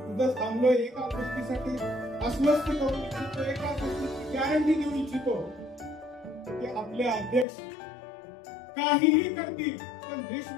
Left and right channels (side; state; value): right; drops out; at 7.5 s